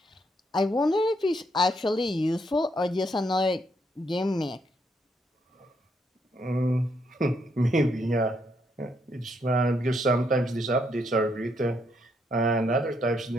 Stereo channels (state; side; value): normal; both; correlation 0.75